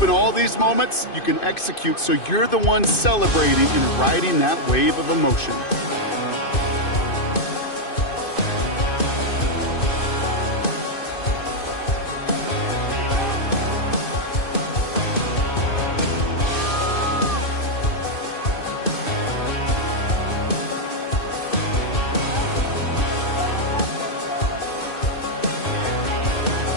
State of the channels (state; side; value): late; right; 2.5 ms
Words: in all these moments you can execute so you're the one celebrating and riding that wave of emotion.